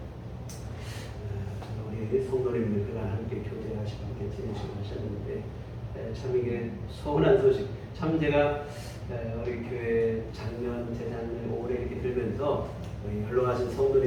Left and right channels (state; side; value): identical; both; correlation 1.00